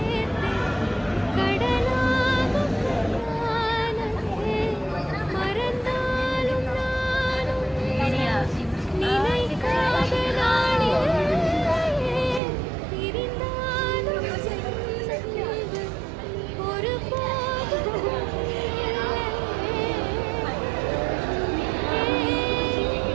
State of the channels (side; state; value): left; drops out; at 12.4 s